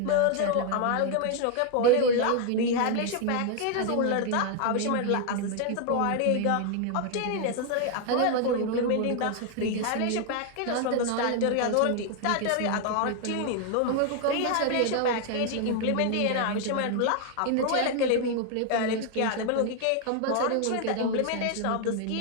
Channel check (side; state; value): both; different; correlation 0.00